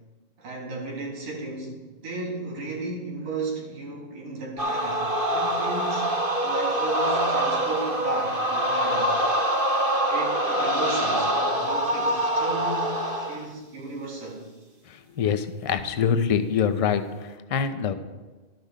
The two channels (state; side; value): late; left; 2.5 ms